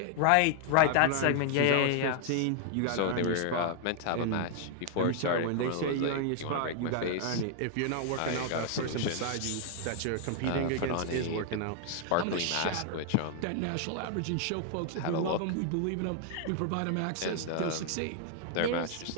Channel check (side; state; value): both; different; correlation 0.00